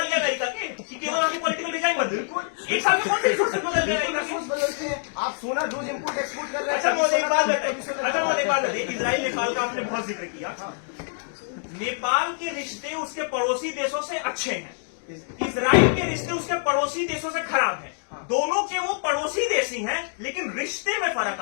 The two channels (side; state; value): right; silent; digital silence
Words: गया अमेरिका के, कि केवल वहां की पॉलिटिकल डिजाइन बदल? एक साल में कौन से रिसोर्सेज बदल गया अमेरिका रिसोर्स के? बदलते हैं। आप सोना रोज इम्पोर्ट एक्सपोर्ट कर रहे हैं। अच्छा महोदय, एक बात कभी बताइए, सोना- अच्छा महोदय, एक बात बताइए, इजराइल नेपाल का आपने बहुत जिक्र किया। नेपाल के रिश्ते उसके पड़ोसी देशों से अच्छे हैं, इजराइल के रिश्ते उसके पड़ोसी देशों से खराब हैं। दोनों के वो पड़ोसी देश ही हैं, लेकिन रिश्ते में फर्क